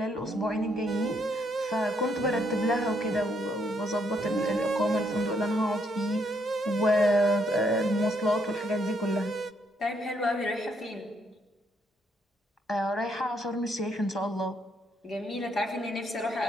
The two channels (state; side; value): normal; both; correlation 0.73